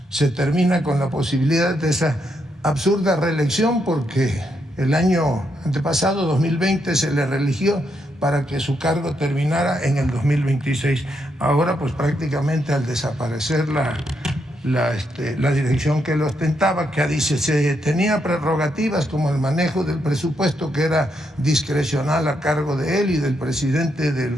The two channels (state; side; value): normal; both; correlation 0.79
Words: Se termina con la posibilidad de esa absurda reelección, porque el año antepasado, 2020, se le reeligió para que su cargo terminara en el 2026. Ahora, pues prácticamente al desaparecer la dirección que lo ostentaba, que dice se tenía prerrogativas como el manejo del presupuesto, que era discrecional a cargo de él y del presidente